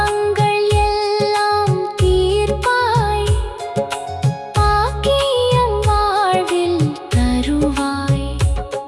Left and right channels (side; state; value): both; identical; correlation 1.00